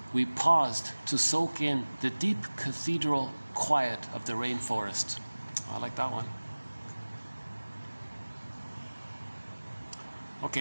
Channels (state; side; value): inverted; both; correlation -1.00